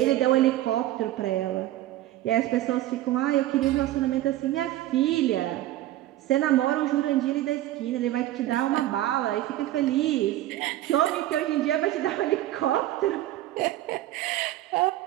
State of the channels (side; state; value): left; quieter; 14.6 dB